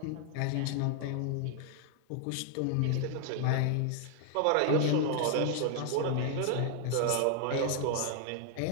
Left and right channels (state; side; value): different; both; correlation 0.00